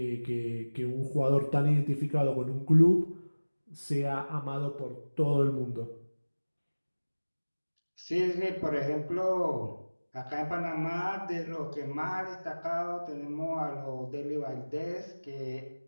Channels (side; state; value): both; inverted; correlation -1.00